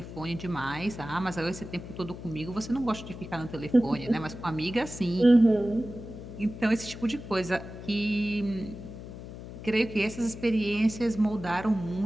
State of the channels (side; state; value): left; noise; hum, 12 dB below the sound